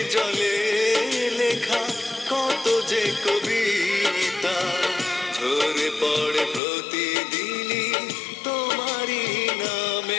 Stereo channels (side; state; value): right; drops out; at 6.6 s